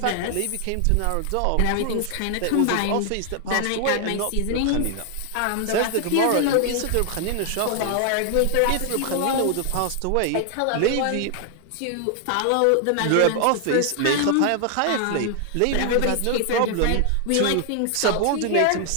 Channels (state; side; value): different; both; correlation 0.00